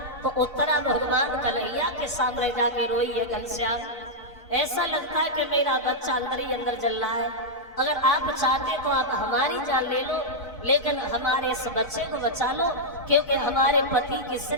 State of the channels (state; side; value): normal; both; correlation -0.06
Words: तो उत्तरा भगवान कन्हैया के सामने जाके रोई है, घनश्याम ऐसा लगता है कि मेरा बच्चा अंदर ही अंदर जल रहा है। अगर आप चाहते तो आप हमारी जान ले लो, लेकिन हमारे इस बच्चे को बचा लो, क्योंकि हमारे पति की